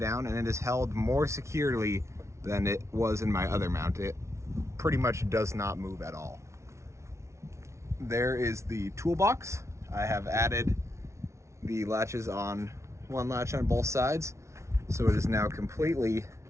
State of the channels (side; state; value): left; late; 0.13 ms